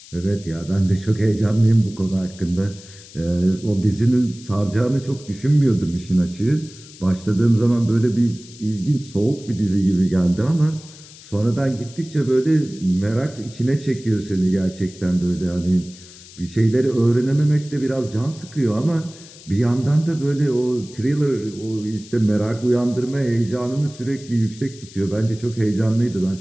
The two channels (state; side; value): noise; left; hiss, 20 dB below the sound